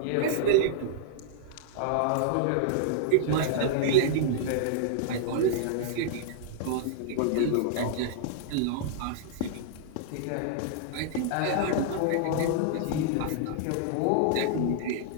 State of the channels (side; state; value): both; different; correlation -0.01